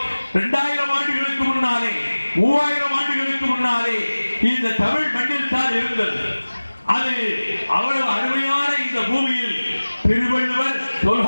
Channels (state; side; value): inverted; both; correlation -1.00